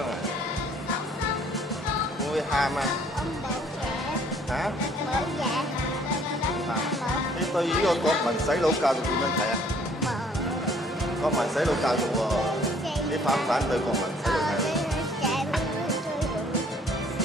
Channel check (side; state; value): both; normal; correlation 0.59